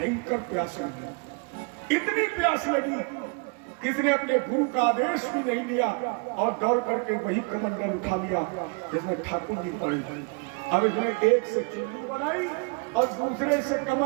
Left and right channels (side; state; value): left; quieter; 32.3 dB